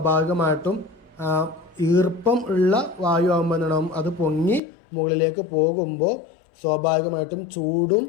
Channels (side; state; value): right; drops out; at 4.6 s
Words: ഈർപ്പം ഉള്ള വായു ആകുമ്പോൾ എന്തുണ്ടാവും? അത് പൊങ്ങി മുകളിലേക്ക് പോകുമ്പോൾ സ്വാഭാവികമായിട്ടും ചൂടും